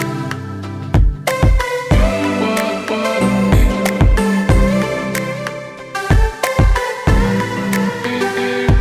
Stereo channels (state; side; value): identical; both; correlation 1.00